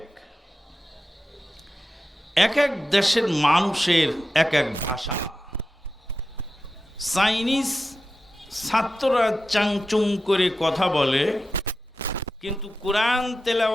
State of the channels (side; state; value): both; normal; correlation 0.91